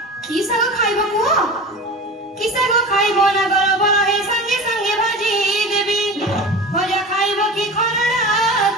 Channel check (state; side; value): normal; both; correlation 0.33